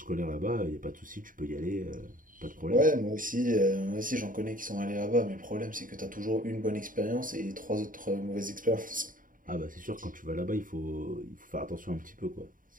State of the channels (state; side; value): late; left; 0.39 ms